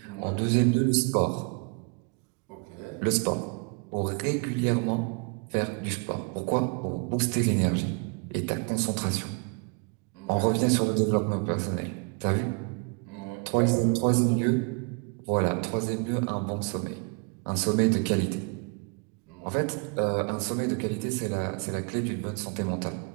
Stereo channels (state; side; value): quieter; left; 34.2 dB